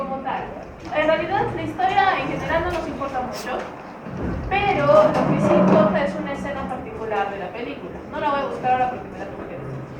tal? En realidad la historia en general no nos importa mucho, pero lo que sí importa es una escena particular de la película. No la voy a buscar ahora porque me la tuve.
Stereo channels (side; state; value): both; identical; correlation 1.00